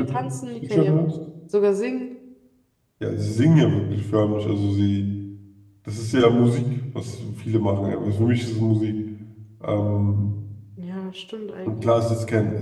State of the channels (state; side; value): identical; both; correlation 1.00